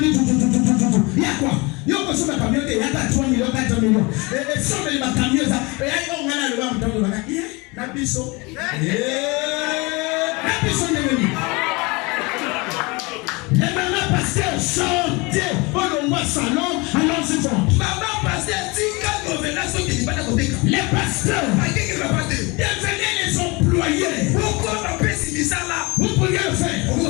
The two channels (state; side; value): quieter; right; 26.3 dB